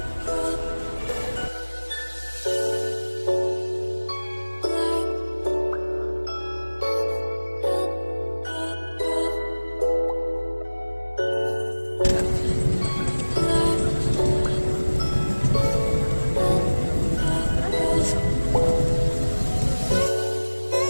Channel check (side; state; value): both; inverted; correlation -1.00